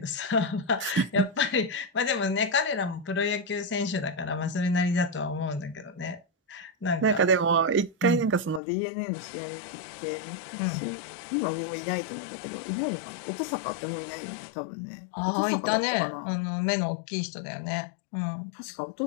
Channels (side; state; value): right; drops out; at 8.6 s